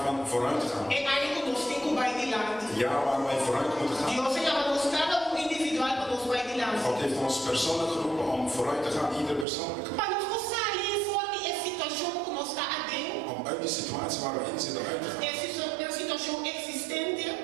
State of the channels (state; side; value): drops out; left; at 9.5 s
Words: van vooruitgaan. É área que nós temos que vai adiante. Het jaar waar wij vooruit moeten gaan. Deus chama nós cada individual para nós vai adiante. God heeft ons persoonlijk geroepen om vooruit te gaan, ieder persoonlijk. Para nós sair fora de situação que nós está adentro. Om uit die situatie waar we in zitten uit te gaan. É situação existente.